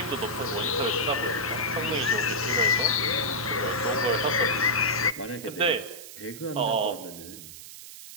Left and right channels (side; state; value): right; noise; hiss, 14 dB below the sound